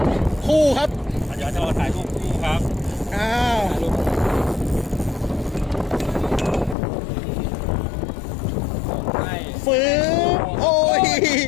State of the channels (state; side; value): drops out; right; at 6.8 s